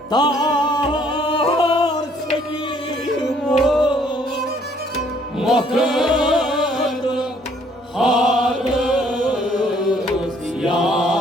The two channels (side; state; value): both; normal; correlation 0.63